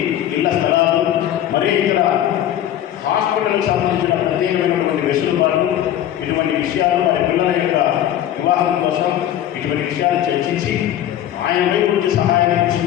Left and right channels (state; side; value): quieter; right; 11.6 dB